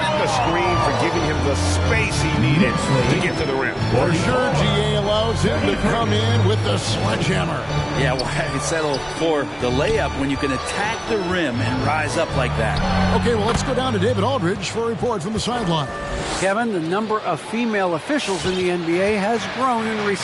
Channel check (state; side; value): identical; both; correlation 1.00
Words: the screen for giving him the space he needed to get to the rim. For sure, GA allows him to come in with the sledgehammer. Yeah, why settle for the layup when you can attack the rim and rise up like that? Okay, well, let's go down to David Aldridge for a report from the sideline. Kevin, the number of female officials in the NBA has grown in